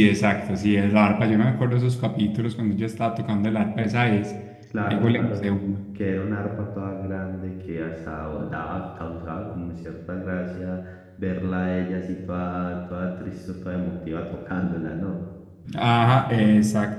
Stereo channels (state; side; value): identical; both; correlation 1.00